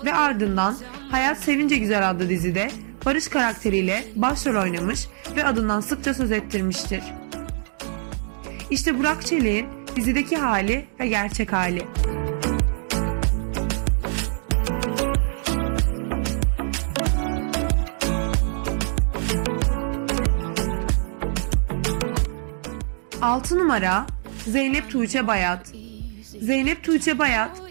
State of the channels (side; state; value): left; silent; digital silence